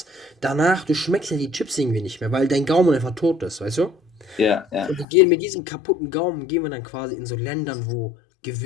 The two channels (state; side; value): drops out; right; at 5.1 s